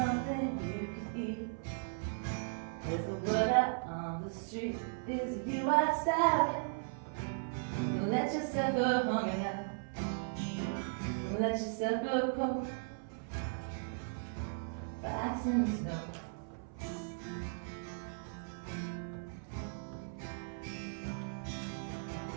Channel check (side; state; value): left; silent; 53 dB below the other